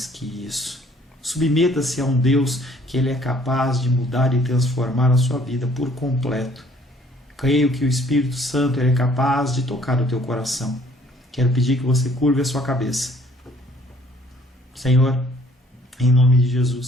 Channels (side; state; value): both; normal; correlation 0.59